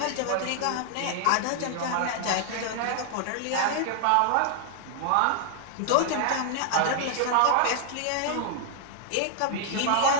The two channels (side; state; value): both; different; correlation 0.00